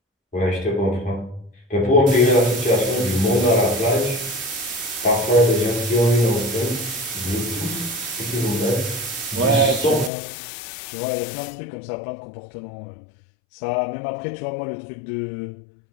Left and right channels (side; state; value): right; drops out; at 10.1 s